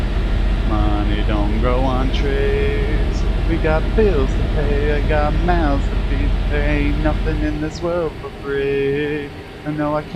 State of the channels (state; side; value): identical; both; correlation 1.00